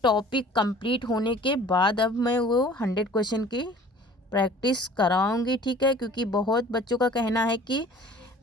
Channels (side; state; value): both; normal; correlation 0.48